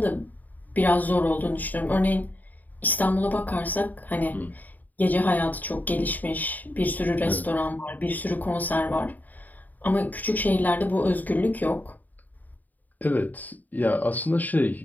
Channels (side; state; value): right; late; 0.083 ms